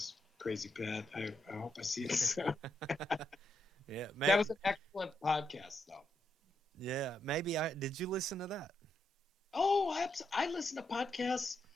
Crazy Pat. I hope I see it soon. Yeah, That was an excellent podcast, though. yeah. Maybe I did. You listen to that? Oh, I listen to podcasts.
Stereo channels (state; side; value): normal; both; correlation 0.80